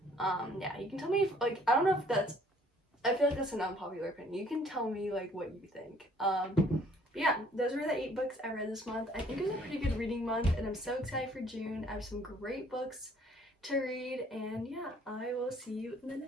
Yeah, you can tell me if, like, I don't know if that's, I feel like that's an unpopular opinion. You can tell me, like, what you think. But yeah, those were the 8 books I read this month. I think it was a pretty good reading month, and I'm so excited for June. I have some great books to read, and yeah, I will see you in the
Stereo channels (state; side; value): normal; both; correlation 0.59